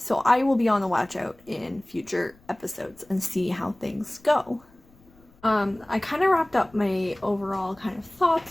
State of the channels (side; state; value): left; noise; rumble, 28 dB below the sound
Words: I will be on the watch out in future episodes and see how things go. I kind of wrapped up my overall kind of